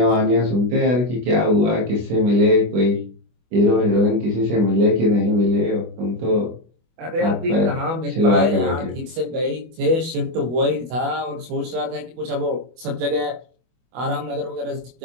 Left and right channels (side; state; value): left; late; 24 ms